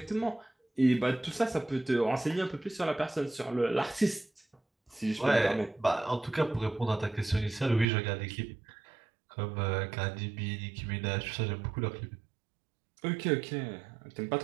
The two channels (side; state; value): left; drops out; at 7.9 s